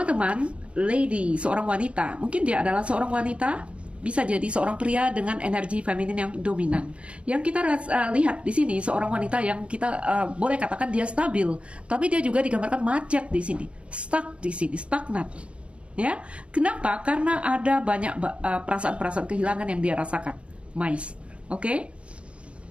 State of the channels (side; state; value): left; late; 0.060 ms